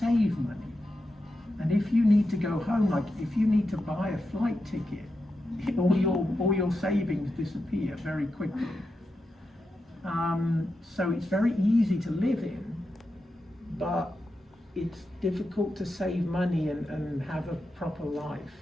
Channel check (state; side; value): normal; both; correlation 0.88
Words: money. And if you need to go home, like if you need to buy a flight ticket, all your savings disappear very quickly. So it's very easy to live in, but it's difficult to save money and have a proper life.